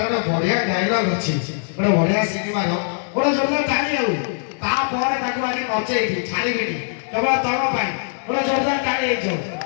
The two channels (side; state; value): right; silent; 65 dB below the other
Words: ଗୋଟେ ବଢିଆ ଡାଇଲଗ ଅଛି, ଗୋଟେ ବଢିଆ ସିନେମାର, ଗୋଟେ ଜୋରଦାର ତାଳି ଆଉ ତାପରେ ତାକୁ ଆଜି ନଚେଇବି ଛାଡ଼ିବିନି କେବଳ ତମ ପାଇଁ, ଗୋଟେ ଜୋରଦାର ତାଳି ହେଇଯାଉ।